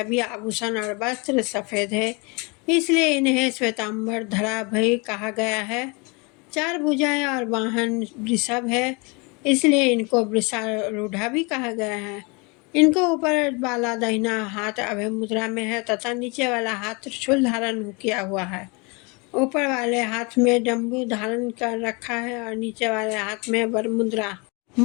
आभूषण और वस्त्र सफ़ेद है, इसलिए इन्हें श्वेतांबर धरा भी कहा गया है। 4 भुजाएं और वाहन वृषभ है, इसलिए इनको वृषारूढ़ा भी कहा गया है। इनको ऊपर वाला दाहिना हाथ अभय मुद्रा में है तथा नीचे वाला हाथ त्रिशूल धारण किया हुआ है। ऊपर वाले हाथ में डमरू धारण कर रखा है और नीचे वाले हाथ में वर मुद्रा।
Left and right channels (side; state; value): right; quieter; 29.6 dB